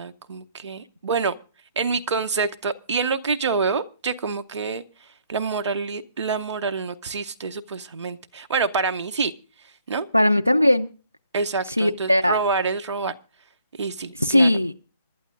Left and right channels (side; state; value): both; inverted; correlation -0.68